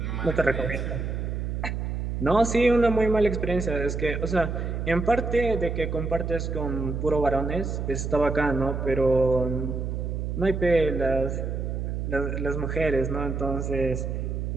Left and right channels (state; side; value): noise; right; hum, 3 dB below the sound